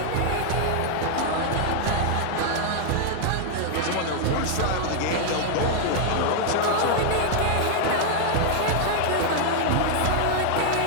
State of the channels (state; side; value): different; both; correlation 0.00